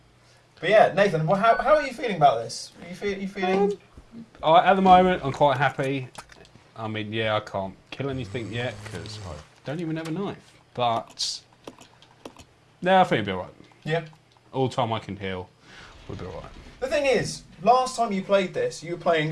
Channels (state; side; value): identical; both; correlation 1.00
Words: But yeah, Nathan, well, how are you feeling about this? Are you feeling? At the moment, I'm quite happy. I mean, yeah, I can't kill anything yet because I don't even have a knife. But no, I think it'll be alright. Yeah. All the time I can heal, we'll be alright. The thing is, last time you played this, you were